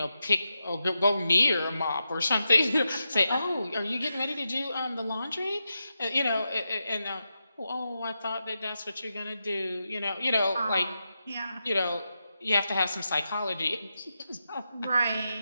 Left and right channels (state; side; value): inverted; both; correlation -0.88